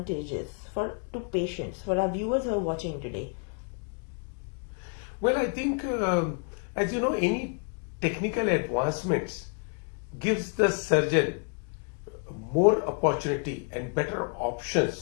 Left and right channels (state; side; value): quieter; right; 39.3 dB